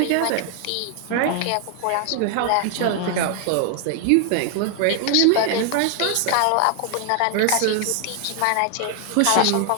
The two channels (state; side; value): different; both; correlation 0.00